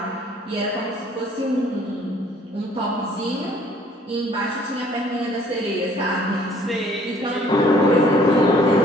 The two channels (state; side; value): normal; both; correlation 0.58